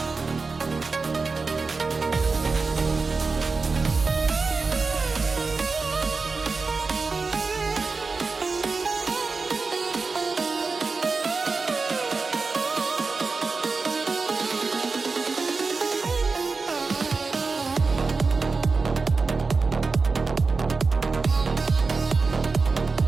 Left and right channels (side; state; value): left; quieter; 4.3 dB